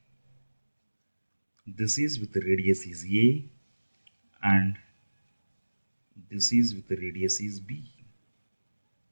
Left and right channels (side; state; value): both; inverted; correlation -1.00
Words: this is with the radius is a and this is with the radius is b.